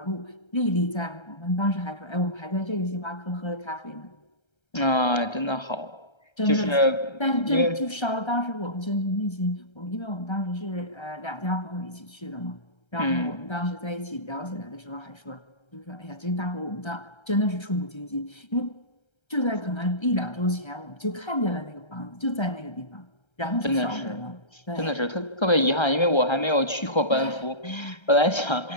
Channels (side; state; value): right; late; 1.3 ms